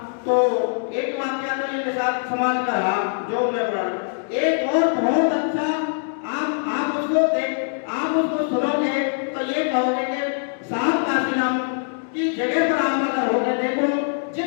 तो एक वाक्य तो ये साथ समाज का रहा जो मैं पढ़ा। एक और बहुत अच्छा, आप उसको सुनोगे तो ये कहोगे कि साहब काशीराम की जगह पर आप अगर होगे, देखो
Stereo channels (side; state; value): right; silent; digital silence